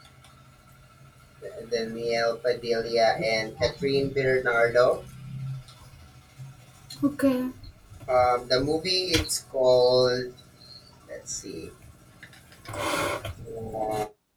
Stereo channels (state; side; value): identical; both; correlation 1.00